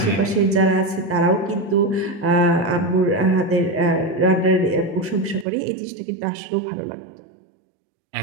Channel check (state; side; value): drops out; left; at 5.5 s